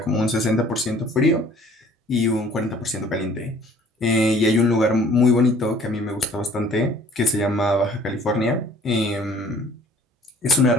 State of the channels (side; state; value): both; normal; correlation 0.54